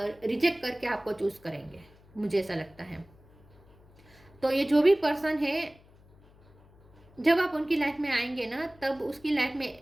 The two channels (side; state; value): left; noise; hum, 27 dB below the sound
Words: करके आपको चूज करेंगे, मुझे ऐसा लगता है। तो ये जो भी पर्सन है जब आप उनकी लाइफ में आएंगे ना, तब उसकी लाइफ में